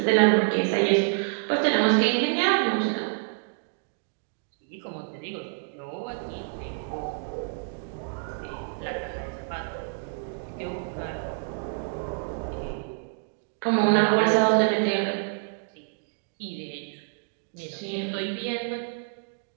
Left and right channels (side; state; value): left; silent; digital silence